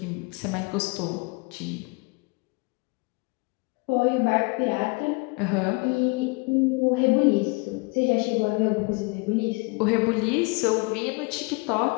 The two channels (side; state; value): right; quieter; 29.4 dB